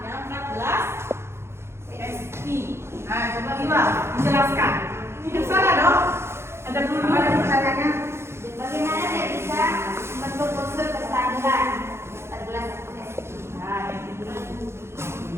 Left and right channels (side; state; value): left; late; 0.12 ms